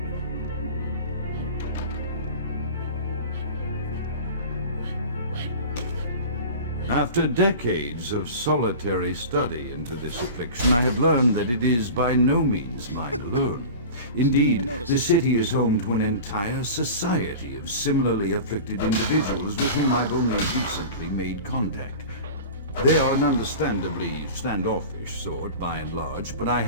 After decades of solitary study into this affliction, I have learned that it is by no means mine alone. Indeed, the city is home to an entire society of similarly afflicted individuals with whom I've only recently made contact. They are an understandably standoffish sort, by and large, but I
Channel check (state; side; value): inverted; both; correlation -0.35